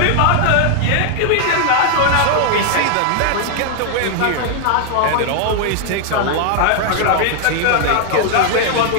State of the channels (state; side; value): different; both; correlation 0.00